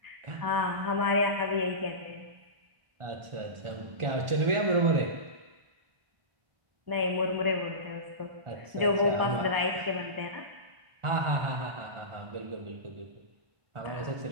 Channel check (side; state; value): left; late; 1.4 ms